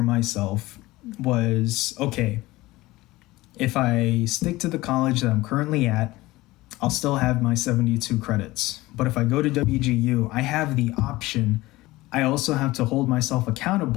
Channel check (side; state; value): right; quieter; 19.1 dB